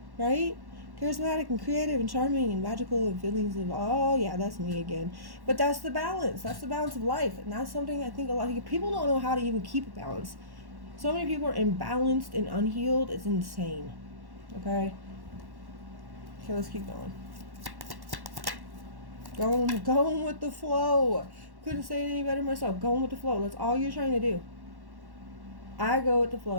right? Charismatic and creative and charming and magical and feelings of, oh yeah, that's me again. But that's the balance. That's the balance of life. And that's something I think a lot of people don't know how to even keep a balance. So many people are imbalanced and unhealed. It's insane. Okay, let's keep going. Going with the flow. Couldn't say it any better myself. Going with the flow. That's all you're trying to do. I go with the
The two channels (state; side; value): late; left; 1.1 ms